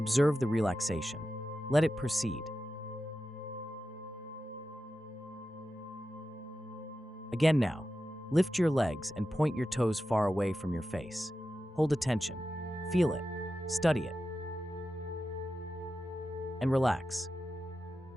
the relaxation. Let it proceed. Again now. Lift your legs and point your toes far away from your face. Hold attention. Feel it. Study it. And relax.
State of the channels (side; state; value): both; normal; correlation 0.91